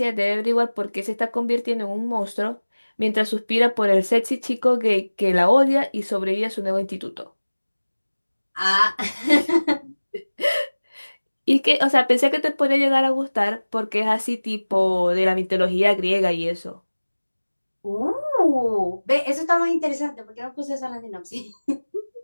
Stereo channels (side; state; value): both; inverted; correlation -1.00